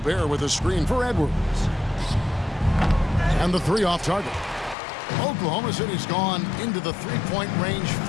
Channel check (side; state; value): right; drops out; at 4.8 s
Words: with a screen for Edwards. And the 3 off target. Oklahoma City's gone into the three-point range